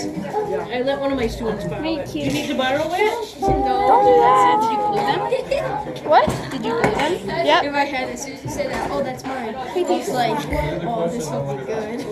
I let one of my students borrow it. Do you need to borrow it? Don't do that. Did you glue them? What? Did you glue them? Yep. In my head, as soon as you say that, oh, that's mine. It's like, oh, this will be good.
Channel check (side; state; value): both; identical; correlation 1.00